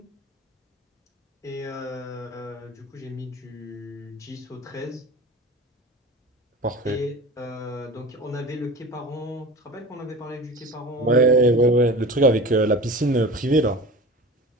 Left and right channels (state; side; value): normal; both; correlation 0.35